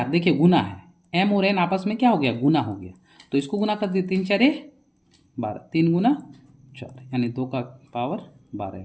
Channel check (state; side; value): identical; both; correlation 1.00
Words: देखिए गुना है, m और n आपस में क्या हो गया, गुना हो गया। तो इसको गुना कर दिए, 3 4 12, 3 गुना 4, यानी 2 का पावर 12